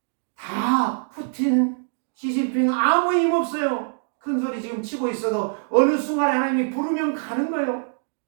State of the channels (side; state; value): left; silent; 63 dB below the other